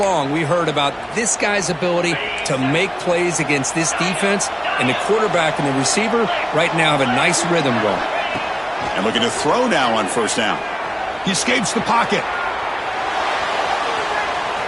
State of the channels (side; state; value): both; identical; correlation 1.00